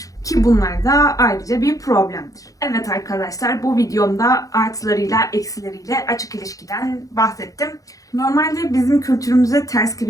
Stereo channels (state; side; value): late; right; 0.17 ms